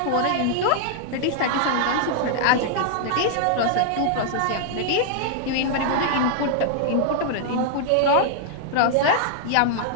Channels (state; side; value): different; both; correlation -0.01